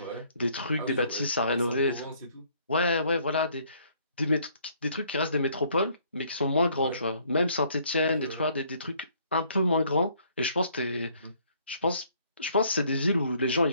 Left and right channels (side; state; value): both; inverted; correlation -0.63